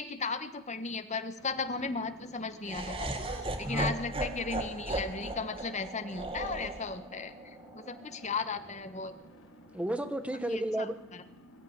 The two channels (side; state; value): both; normal; correlation 0.30